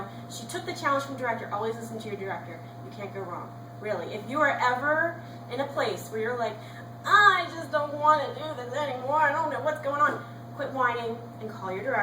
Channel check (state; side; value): identical; both; correlation 1.00